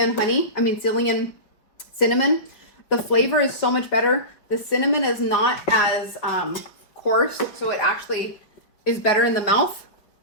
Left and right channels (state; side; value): late; right; 5.3 ms